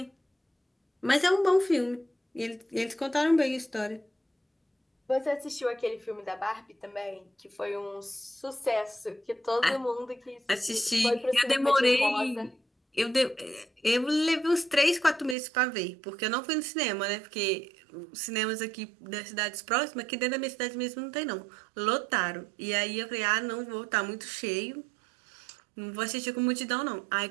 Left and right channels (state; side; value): drops out; left; at 15.4 s